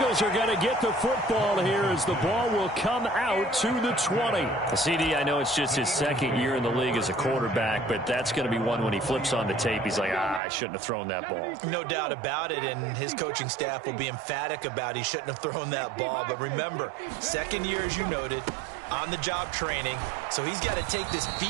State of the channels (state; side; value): drops out; left; at 10.4 s